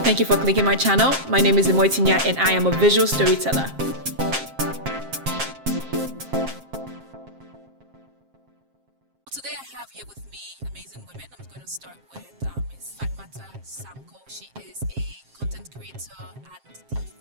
you for clicking my channel. My name is Imoitinya, and I am a visual storyteller. Today I have here with me amazing women. I'm going to start with Ms. Fatmata Sanko. She is a content creator and the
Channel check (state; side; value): late; left; 7.5 ms